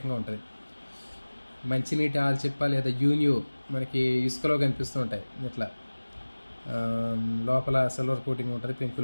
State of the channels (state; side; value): inverted; both; correlation -1.00